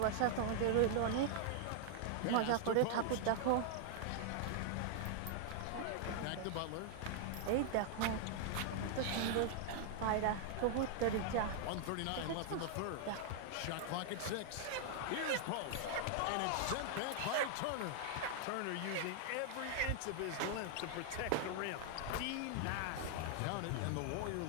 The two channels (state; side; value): different; both; correlation 0.00